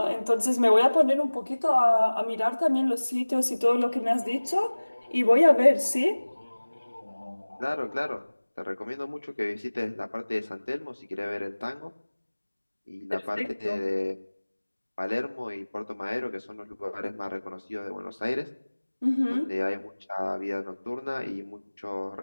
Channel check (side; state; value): both; inverted; correlation -1.00